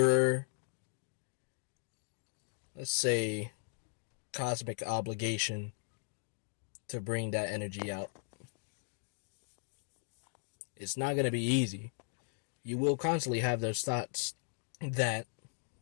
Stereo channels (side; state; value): right; silent; digital silence